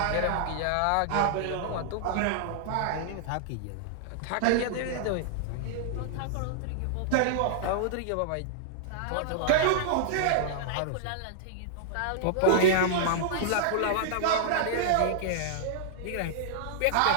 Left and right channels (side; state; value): both; different; correlation -0.01